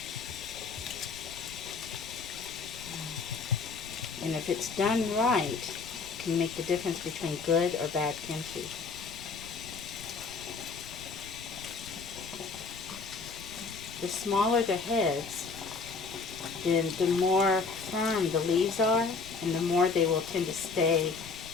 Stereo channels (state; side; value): quieter; right; 4.7 dB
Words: And if it's done right, it can make the difference between good or bad kimchi. The smaller the heads, then the more firm the leaves are, and the more they will tend to stay